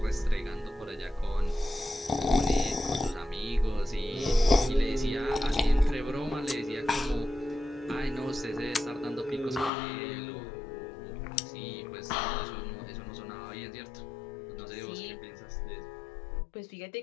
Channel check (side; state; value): right; drops out; at 9.7 s